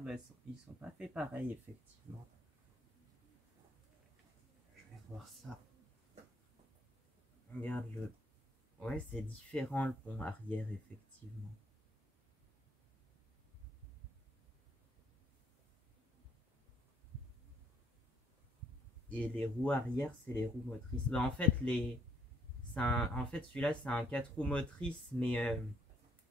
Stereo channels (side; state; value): both; normal; correlation 0.68